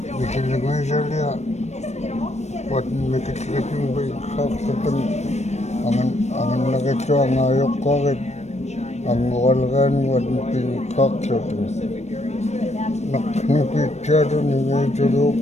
mikelnguasalia mikelnguutning biqaqsatan anganlaqittua ayuqarit unguvalriaruat pinqaqsatan naqnupitsaatun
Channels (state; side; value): late; right; 0.32 ms